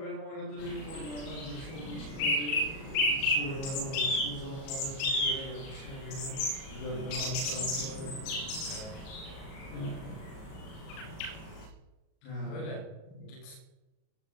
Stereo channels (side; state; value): right; late; 37 ms